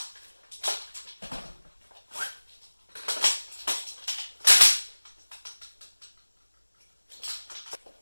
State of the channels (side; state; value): both; inverted; correlation -1.00